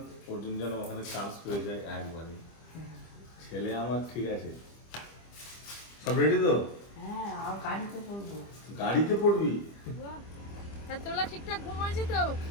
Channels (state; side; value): late; right; 25 ms